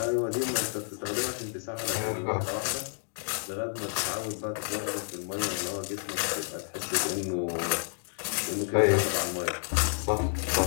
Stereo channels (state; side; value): silent; right; digital silence